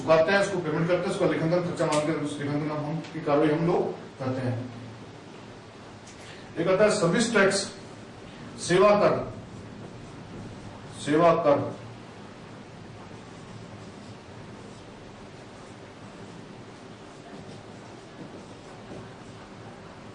हैं, उसको पेमेंट करते हैं, उसका लेखांकन खर्चा मान कर उस लेखांकन हम की कार्रवाई हम लोग करते हैं। एक आता है सर्विस टैक्स, सेवा कर। सेवा कर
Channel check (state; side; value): identical; both; correlation 1.00